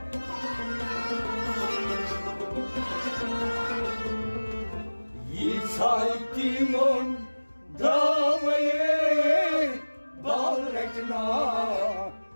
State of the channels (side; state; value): both; inverted; correlation -1.00